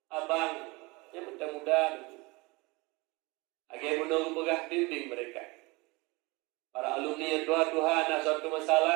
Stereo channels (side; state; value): left; quieter; 25.1 dB